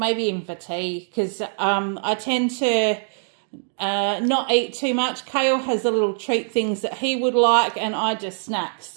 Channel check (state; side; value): silent; left; digital silence